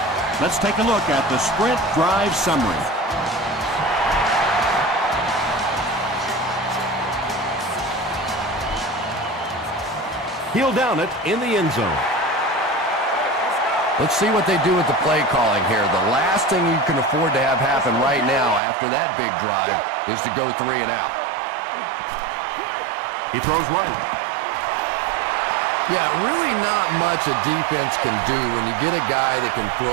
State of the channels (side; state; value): left; drops out; at 18.6 s